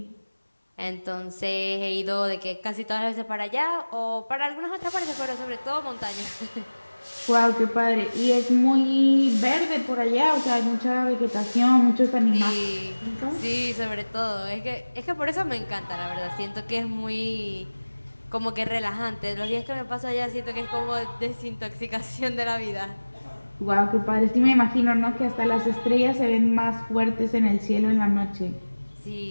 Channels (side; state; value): both; inverted; correlation -1.00